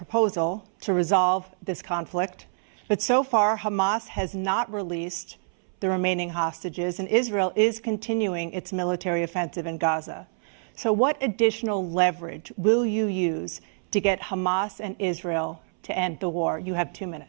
to resolve this conflict, but so far Hamas has not released the remaining hostages, and Israel is continuing its military offensive in Gaza. So what additional leverage will you use to get Hamas and Israel to end the war? You have 2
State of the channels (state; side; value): silent; left; 61 dB below the other